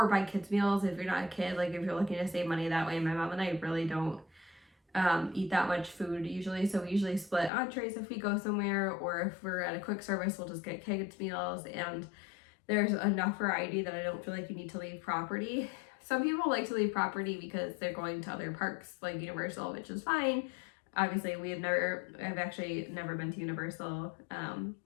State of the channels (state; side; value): drops out; right; at 7.5 s